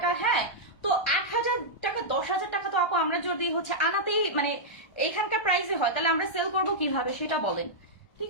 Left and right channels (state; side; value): late; right; 1.3 ms